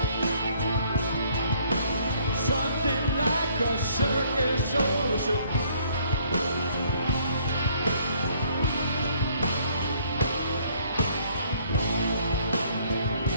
Something like a circus or a zoo.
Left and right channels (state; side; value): inverted; both; correlation -0.63